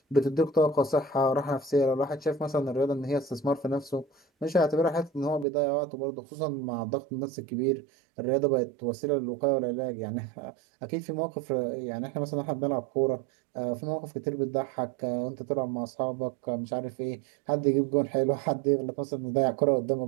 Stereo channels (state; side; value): drops out; left; at 5.5 s